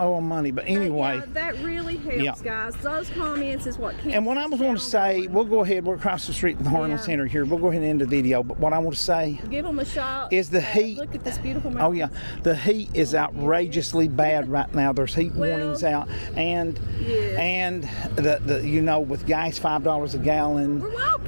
owe them money. But anyway. yeah, that really helps, guys. Those comments is what keeps. And what I was going to say, we'll go ahead. We're across the street from the Harlan Center here. We'll go ahead and end the video. But what I want to say give them a shot. is the heat. Look at this beautiful mountain. Oh yeah, the heat is outrageously bad right now. There's heat warnings out, and the you know, with gas $5 a gallon, We're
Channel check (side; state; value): both; inverted; correlation -1.00